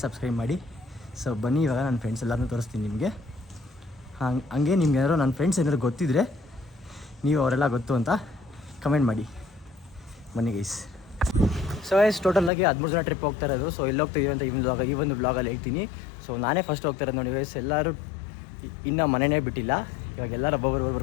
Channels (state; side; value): drops out; right; at 12.5 s